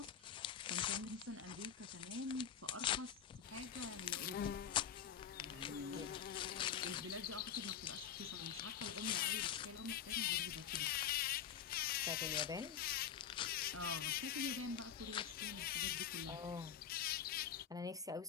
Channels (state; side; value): quieter; right; 8.7 dB